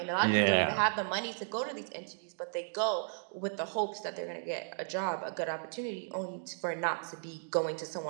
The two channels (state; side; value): silent; left; digital silence